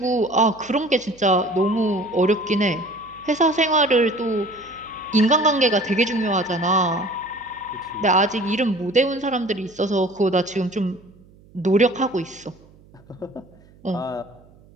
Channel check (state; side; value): noise; right; hum, 27 dB below the sound